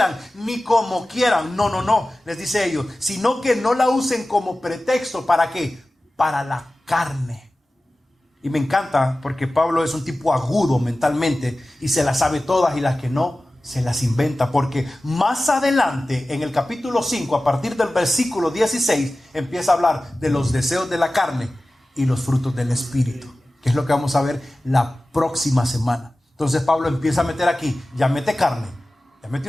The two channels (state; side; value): normal; both; correlation 0.96